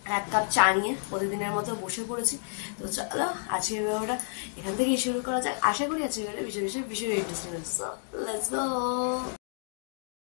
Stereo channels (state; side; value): silent; right; digital silence